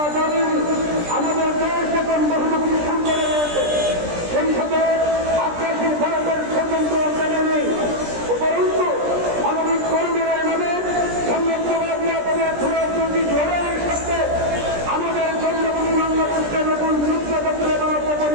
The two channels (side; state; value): left; late; 17 ms